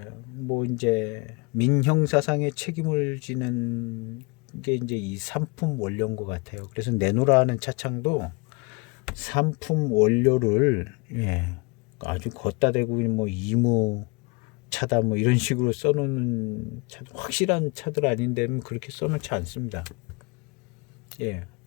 뭐 이제 민형사상의 책임을 지는 게 이제 이 산품 원료인 것 같아요. 그래서 내노라 하는 차창도 산품 원료를 아주 걷다 대고 뭐 이무 차다 뭐 이런 식으로 써놓는 차, 확실한 차들 아닌데는 그렇게 써놓지 않습니다. 예,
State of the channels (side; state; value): right; quieter; 29.8 dB